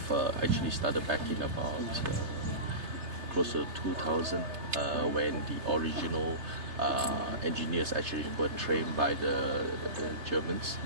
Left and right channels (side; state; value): left; late; 3.3 ms